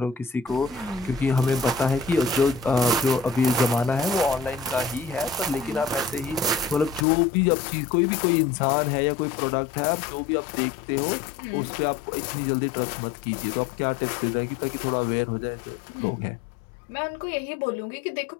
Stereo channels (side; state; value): right; drops out; at 7.1 s